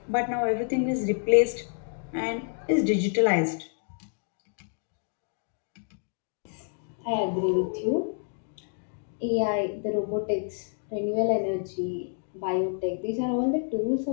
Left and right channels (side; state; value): right; silent; digital silence